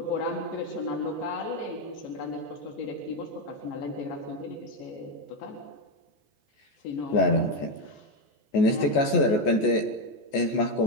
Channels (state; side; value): late; right; 14 ms